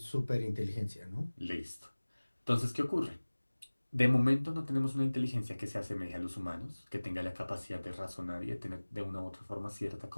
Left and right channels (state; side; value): inverted; both; correlation -1.00